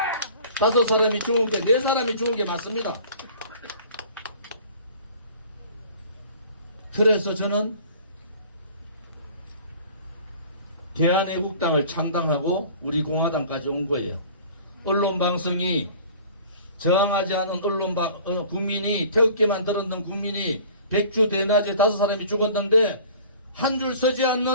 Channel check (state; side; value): inverted; both; correlation -0.47